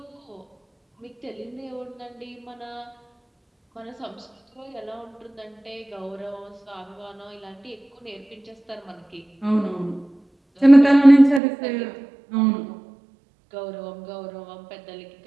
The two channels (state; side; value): drops out; left; at 11.4 s